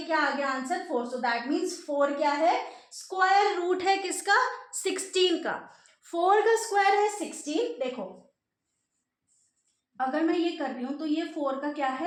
क्या आ गया आंसर 4। सो दैट मीन्स 4 क्या है, स्क्वायर रूट है किसका, 16 का। 4 का स्क्वायर है 16। देखो अगर मैं ये कर रही हूं तो ये 4 का क्या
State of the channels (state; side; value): identical; both; correlation 1.00